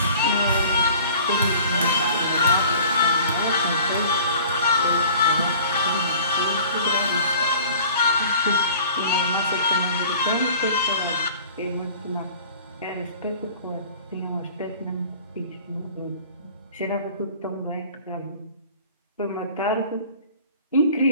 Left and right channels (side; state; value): both; inverted; correlation -0.47